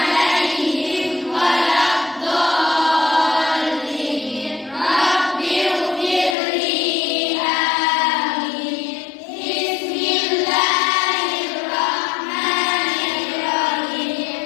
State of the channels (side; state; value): right; drops out; at 6.4 s